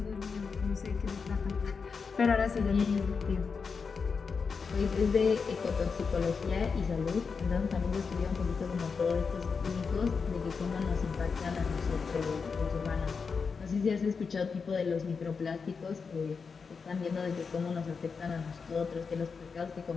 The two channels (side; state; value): right; quieter; 5.3 dB